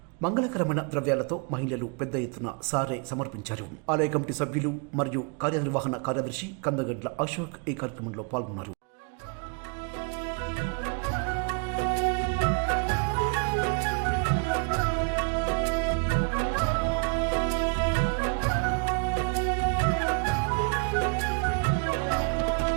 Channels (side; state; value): left; quieter; 35.4 dB